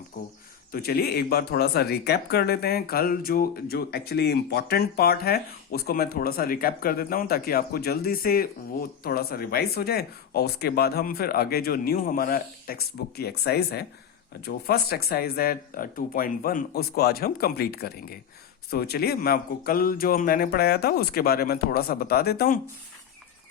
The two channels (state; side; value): quieter; right; 8.6 dB